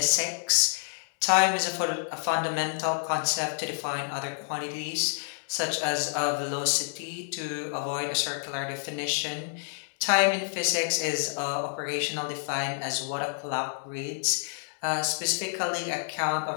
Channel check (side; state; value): right; silent; digital silence